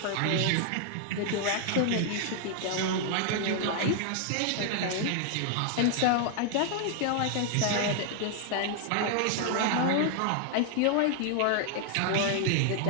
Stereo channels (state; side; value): different; both; correlation 0.00